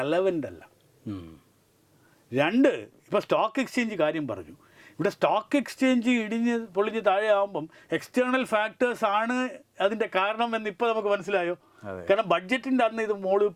അല്ല. 2, ഇപ്പോൾ സ്റ്റോക്ക് എക്സ്ചേഞ്ച് കാര്യം പറഞ്ഞു. ഇവിടെ സ്റ്റോക്ക് എക്സ്ചേഞ്ച് പൊളിഞ്ഞ് താഴെ ആകുമ്പം എക്സ്റ്റേണൽ ഫാക്ടേഴ്സ് ആണ് അതിൻ്റെ കാരണം എന്ന് ഇപ്പോൾ നമുക്ക് മനസ്സിലായോ. കാരണം ബഡ്ജറ്റിൻ്റെ അന്ന് ഇത് മുകളിൽ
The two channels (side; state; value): both; identical; correlation 1.00